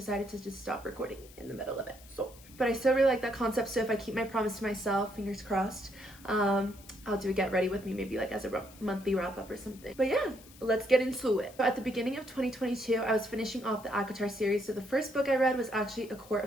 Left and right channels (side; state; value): left; noise; hiss, 22 dB below the sound